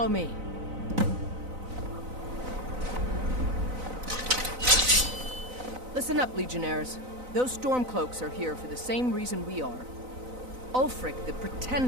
me. Listen up, Legionnaires. Those Stormcloaks are here for the same reason we are. Ulfric, the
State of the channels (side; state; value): left; late; 4.0 ms